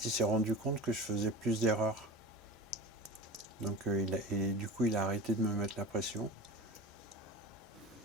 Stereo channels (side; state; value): both; normal; correlation 0.32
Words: il s'est rendu compte que je faisais plus d'erreurs. Donc, et du coup, il a arrêté de me mettre la pression.